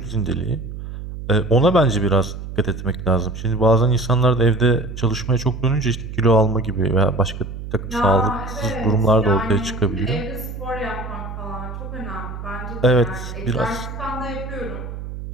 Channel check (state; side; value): noise; right; hum, 9 dB below the sound